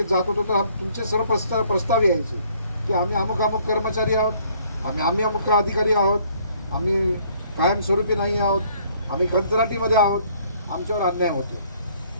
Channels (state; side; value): inverted; both; correlation -0.63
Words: जात होतो तर तुमचे सर्व प्रस्ताव यायचे की आम्ही अमुक कर्मचारी आहोत, आम्ही अमुक अधिकारी आहोत, आम्ही कायमस्वरूपी नाही आहोत, आम्ही कंत्राटीमध्ये आहोत, आमच्यावर अन्याय होतो.